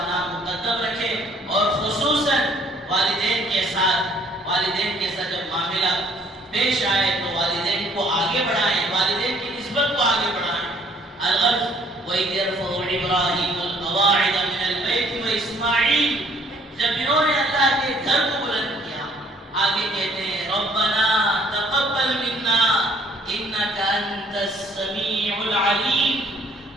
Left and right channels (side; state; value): both; normal; correlation 0.60